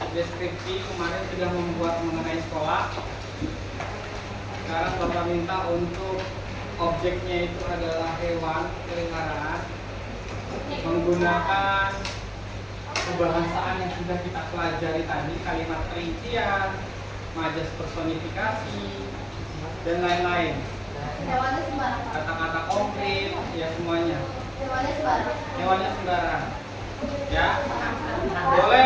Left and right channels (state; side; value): identical; both; correlation 1.00